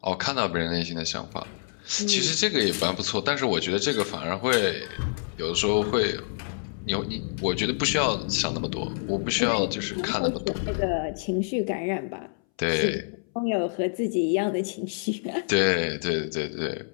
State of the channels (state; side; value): silent; right; 60 dB below the other